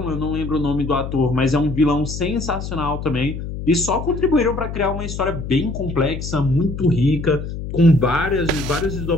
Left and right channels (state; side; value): noise; left; hum, 7 dB below the sound